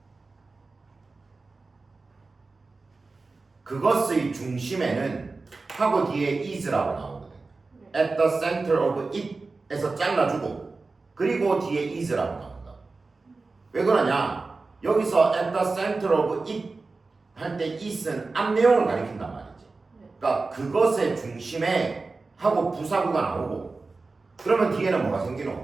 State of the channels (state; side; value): quieter; left; 3.8 dB